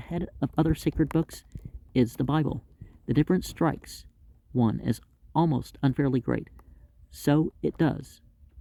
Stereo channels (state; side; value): identical; both; correlation 1.00